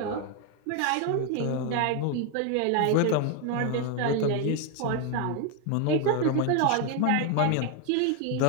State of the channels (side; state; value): both; different; correlation 0.01